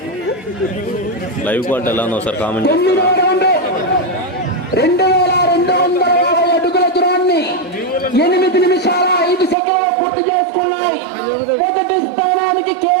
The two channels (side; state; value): left; drops out; at 9.6 s